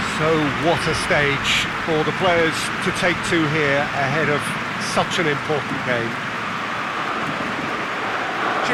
So what a stage for the players to take to here ahead of such an important game.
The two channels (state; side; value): identical; both; correlation 1.00